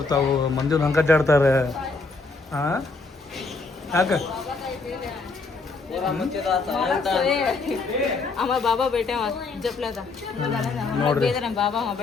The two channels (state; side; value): quieter; right; 3.9 dB